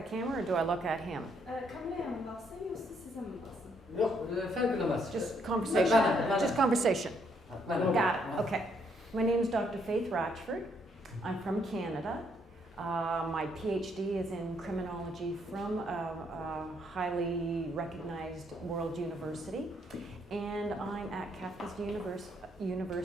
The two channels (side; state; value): both; normal; correlation 0.71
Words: camera or do I look at him? Kameraya mı baksın yoksa size mi baksın? Yok, fark edemez. Just conversation. Just conversation. Got Got it. Okay. My name is Dr. Faith Ratchford. I'm from Canada. My PhD is in criminology from a highly recognized world university. And I'm at Qafqaz